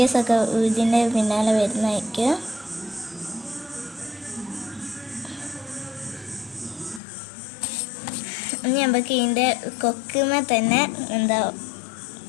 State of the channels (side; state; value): right; drops out; at 7.0 s